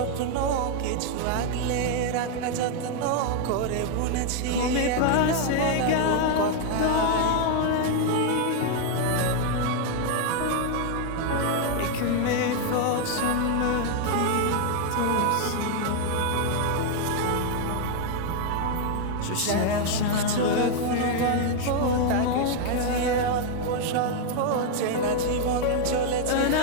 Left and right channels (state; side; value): different; both; correlation 0.00